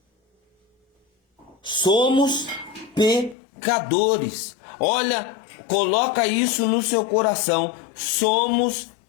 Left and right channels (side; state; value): right; drops out; at 3.4 s